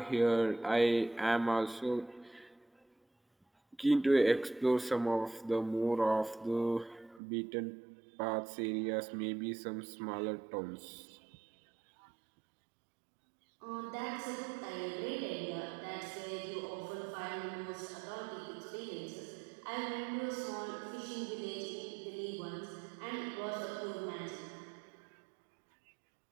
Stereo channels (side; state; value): left; drops out; at 7.2 s